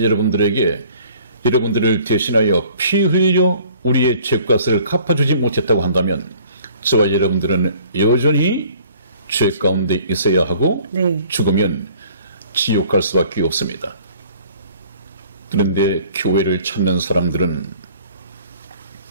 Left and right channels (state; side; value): inverted; both; correlation -0.53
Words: 여러분들에게 여러분들을 대신하여 피 흘려 우리의 죄값을 갚아주지 못했다고 한다면 저와 여러분들은 여전히 죄 가운데 있어야 하고 네. 죽으면 지옥 갈 수밖에 없습니다. 그런데 교회를 찾는 사람들은